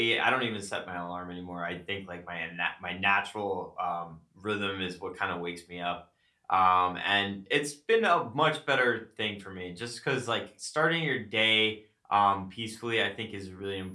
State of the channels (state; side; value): identical; both; correlation 1.00